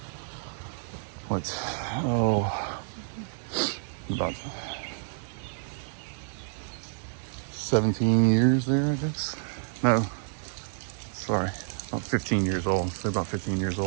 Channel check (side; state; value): left; silent; digital silence